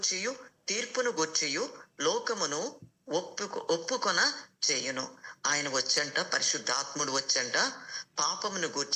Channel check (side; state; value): both; identical; correlation 1.00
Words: తీర్పును గూర్చియు లోకమును ఒప్పుకొన చేయును. ఆయన వచ్చంట, పరిశుద్ధాత్ముడు వచ్చంట, పాపమును